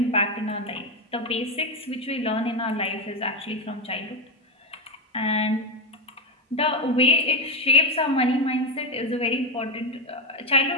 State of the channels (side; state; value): both; normal; correlation 0.10